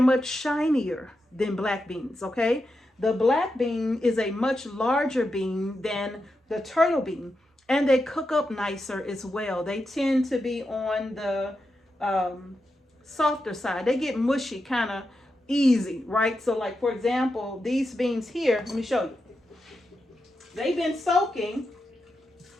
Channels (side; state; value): both; normal; correlation 0.87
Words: much shinier than black beans, okay? The black bean is a much larger bean than the turtle bean, and they cook up nicer as well. They tend to be on the softer side. They get mushy kind of easy, right? So like, for example, these beans here, let me show you. They've been soaking,